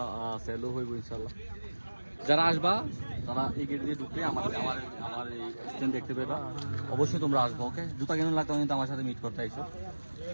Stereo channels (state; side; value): inverted; both; correlation -1.00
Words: সেলও হইব ইনশাল্লাহ। যারা আসবা তারা এই গেট দিয়ে ঢুকলে আমার এই স্ট্যান্ড দেখতে পেবা। অবশ্যই তোমরা আসবো, ওকে? জুতা কেন লাগতো কিন্তু আমার সাথে মিট করতে আইসো,